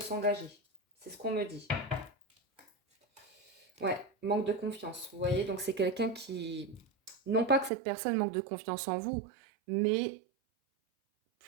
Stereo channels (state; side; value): drops out; left; at 7.7 s